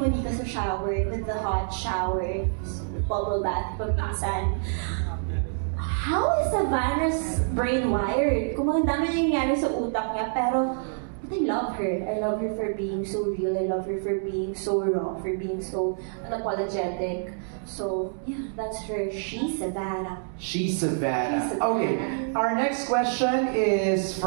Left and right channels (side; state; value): left; silent; digital silence